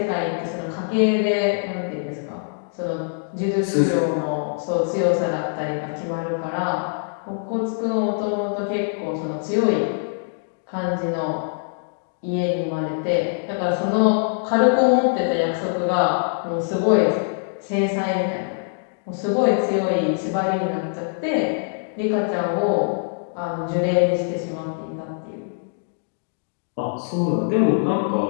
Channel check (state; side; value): silent; right; digital silence